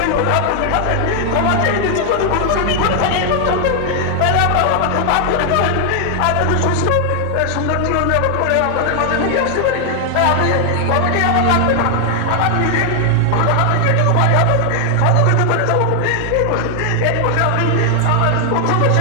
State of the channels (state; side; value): different; both; correlation 0.00